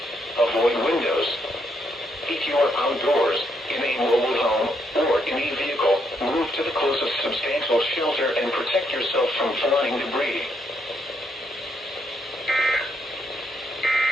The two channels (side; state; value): both; normal; correlation 0.75